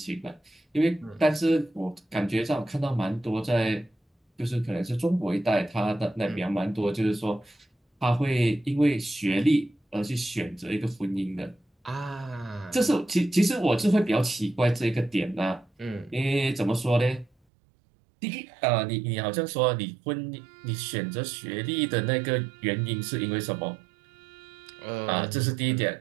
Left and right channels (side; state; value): left; drops out; at 17.3 s